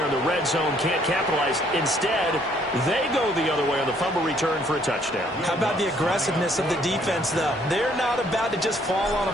in the red zone, can't capitalize. Instead, they go the other way on the fumble return for a touchdown. How about the aggressiveness of the defense, though? They're not about to just fall on a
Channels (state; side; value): normal; both; correlation 0.64